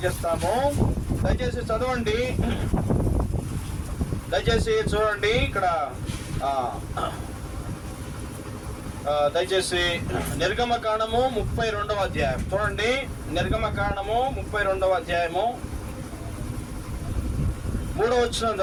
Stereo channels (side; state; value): both; identical; correlation 1.00